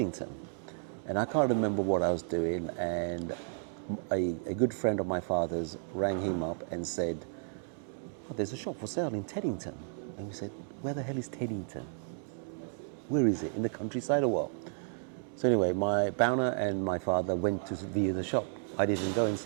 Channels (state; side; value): silent; left; 56 dB below the other